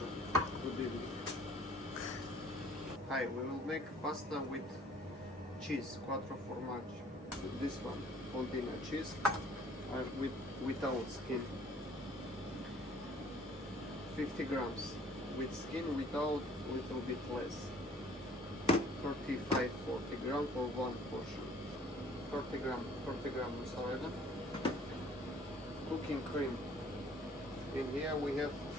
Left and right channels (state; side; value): normal; both; correlation 0.54